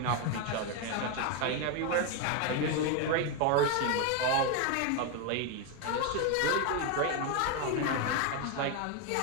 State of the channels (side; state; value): both; different; correlation 0.02